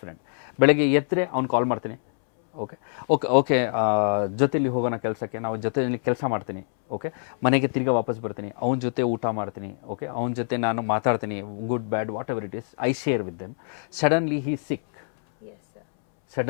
friend. ಬೆಳಗ್ಗೆ ಎತ್ತರೆ ಅವ್ನು ಕಾಲ್ ಮಾಡ್ತೀನಿ. Okay ಜೊತೆಲಿ ಹೋಗೋಣ ಕೆಲಸಕ್ಕೆ, ನಾವು ಜೊತೆಲಿ ಕೆಲಸ ಮಾಡ್ತೀನಿ. ಓಕೆ, ಮನೆಗೆ ತಿರ್ಗಾ ವಾಪಸ್ ಬರ್ತೀನಿ, ಅವನ ಜೊತೆ ಊಟ ಮಾಡ್ತೀನಿ. ಓಕೆ, ಅವನ ಜೊತೆ ನಾನು ಮಾತಾಡ್ತೀನಿ, good bad whatever it is, I share with them. Suddenly he sick.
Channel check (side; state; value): right; silent; 62 dB below the other